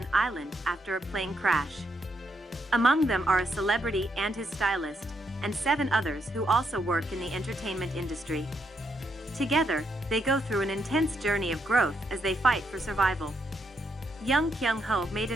island after a plane crash. Among them are a celebrity and his stylist, and 7 others who also work in the entertainment industry. Together, they go through an intense journey of growth as they fight for survival. Young Kyung-Ho made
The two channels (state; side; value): normal; both; correlation 0.78